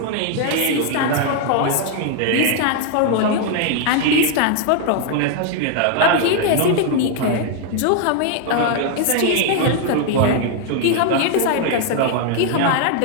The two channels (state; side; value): different; both; correlation 0.00